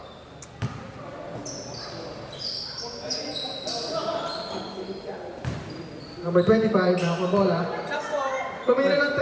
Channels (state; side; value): identical; both; correlation 1.00